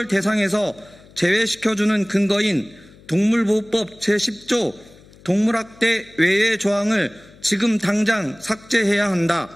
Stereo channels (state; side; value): noise; left; hum, 25 dB below the sound